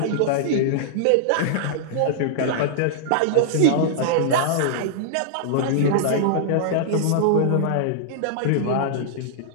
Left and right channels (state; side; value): different; both; correlation -0.02